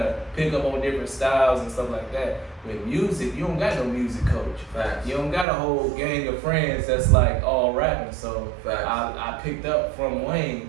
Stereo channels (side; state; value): left; drops out; at 5.5 s